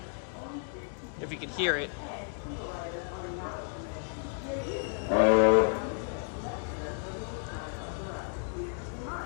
if you can hear it.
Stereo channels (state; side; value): silent; right; 56 dB below the other